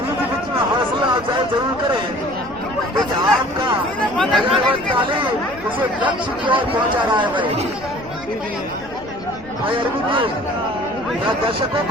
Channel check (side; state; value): left; noise; rumble, 20 dB below the sound